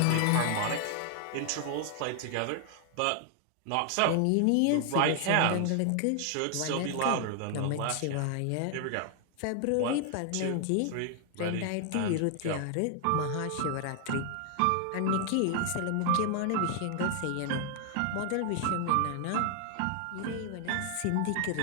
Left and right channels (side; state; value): both; different; correlation 0.00